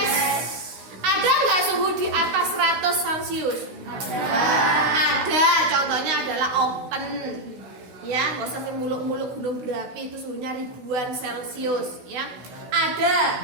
Ada nggak suhu di atas 100 Celcius? Ada. Contohnya adalah open. Ya, nggak usah muluk-muluk gunung berapi, itu suhunya ribuan Celcius. Ya,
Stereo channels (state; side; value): late; left; 16 ms